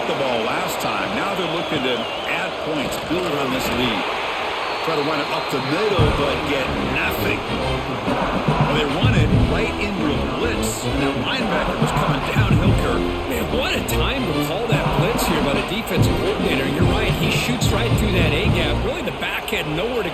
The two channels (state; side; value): identical; both; correlation 1.00